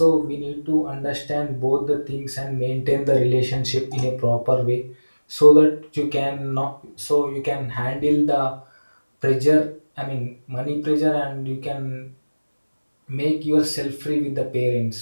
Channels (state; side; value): inverted; both; correlation -1.00